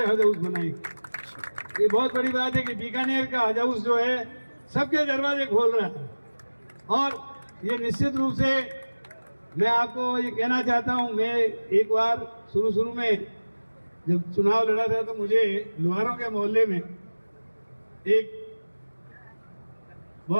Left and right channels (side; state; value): both; inverted; correlation -1.00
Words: हज हाउस बनाएंगे। ये बहुत बड़ी बात है कि बीकानेर का हज हाउस जो है सबके दरवाजे खोल रहा है। और ये निश्चित रूप से मैं आपको ये कहना चाहता हूँ, मैं एक बार शुरू में जब चुनाव लड़ा था तो मुझे लोहारों के मोहल्ले में एक